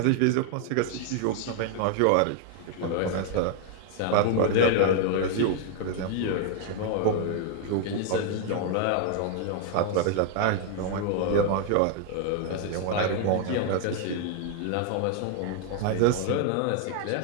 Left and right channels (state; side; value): different; both; correlation 0.00